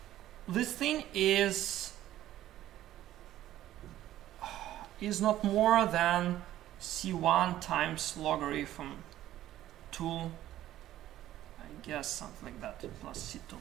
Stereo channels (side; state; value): left; quieter; 13.4 dB